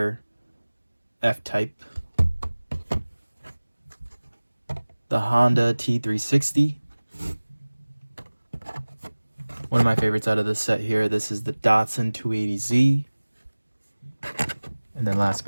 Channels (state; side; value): inverted; both; correlation -1.00